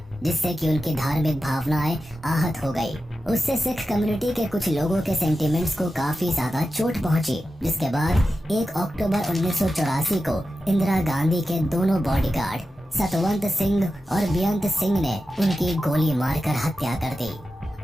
जिससे कि उनकी धार्मिक भावनाएं आहत हो गई। उससे सिख कम्युनिटी के कुछ लोगों के सेंटिमेंट्स को काफी ज्यादा चोट पहुंची, जिसके बाद 1 अक्टूबर 1984 को इंदिरा गांधी के दोनों बॉडीगार्ड सतवंत सिंह और बेअंत सिंह ने उनकी गोली मारकर हत्या कर दी।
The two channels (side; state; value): both; normal; correlation 0.92